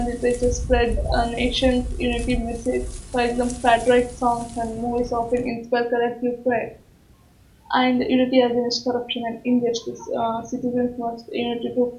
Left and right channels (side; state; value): both; identical; correlation 1.00